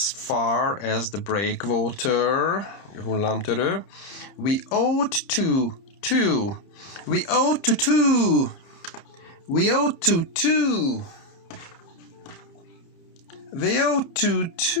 far as the breakwater, hullámtörő, we ought to.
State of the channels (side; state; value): right; late; 29 ms